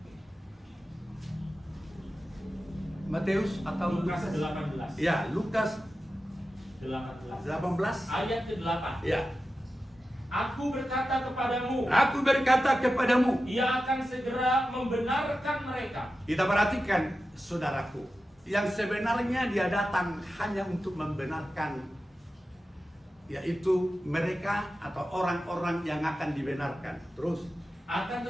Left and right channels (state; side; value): normal; both; correlation 0.92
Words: Matius atau Lukas 18. Ya, Lukas 18. 18. Ayat ke-8. Ya. Aku berkata kepadamu, Aku berkata kepadamu. ia akan segera membenarkan mereka. Kita perhatikan, saudaraku, yang sebenarnya dia datang hanya untuk membenarkan, yaitu mereka atau orang-orang yang akan dibenarkan. Terus Akan